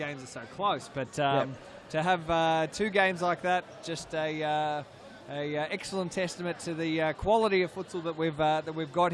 are so close, but to have 2 games like that, just a excellent testament to the quality of futsal that we've got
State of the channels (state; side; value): identical; both; correlation 1.00